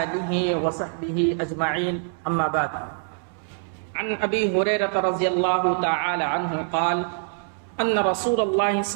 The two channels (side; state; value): left; silent; 62 dB below the other